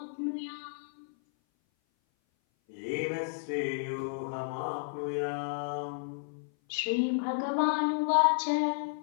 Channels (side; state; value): right; silent; 56 dB below the other